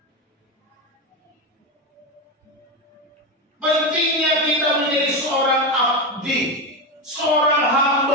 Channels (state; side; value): normal; both; correlation 0.15